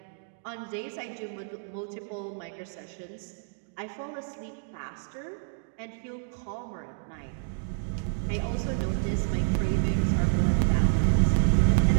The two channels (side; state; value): left; silent; digital silence